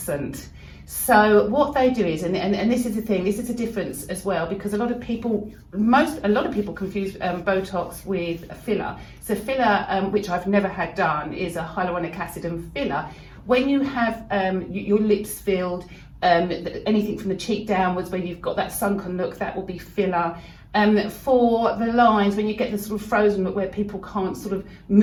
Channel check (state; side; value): identical; both; correlation 1.00